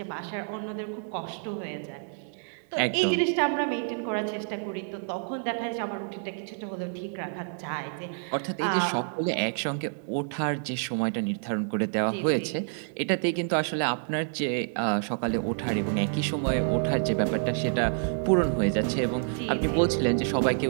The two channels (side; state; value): left; silent; digital silence